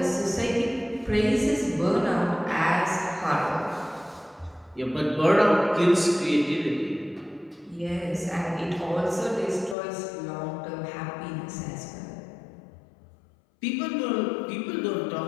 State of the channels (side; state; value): right; drops out; at 9.8 s